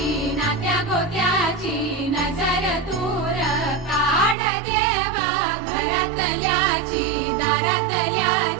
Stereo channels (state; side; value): drops out; left; at 4.4 s